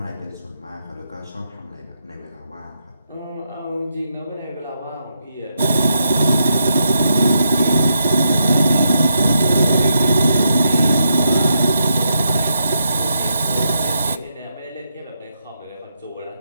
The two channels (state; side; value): inverted; both; correlation -0.82